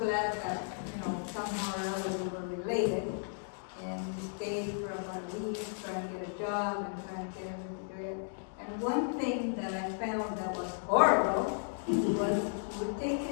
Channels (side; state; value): right; silent; digital silence